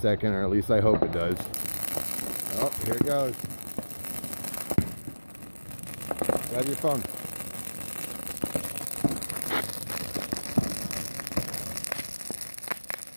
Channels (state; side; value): inverted; both; correlation -1.00